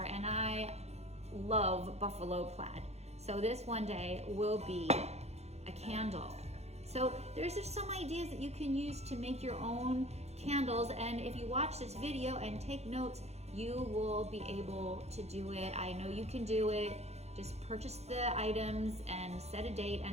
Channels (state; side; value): late; left; 0.31 ms